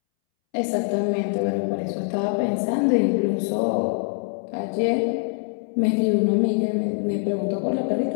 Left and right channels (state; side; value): silent; right; 63 dB below the other